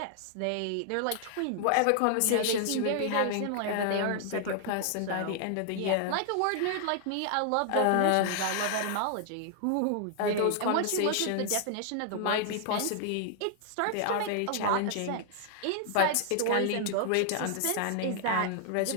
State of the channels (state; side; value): different; both; correlation 0.00